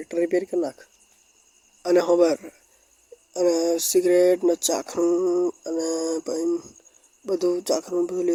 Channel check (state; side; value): identical; both; correlation 1.00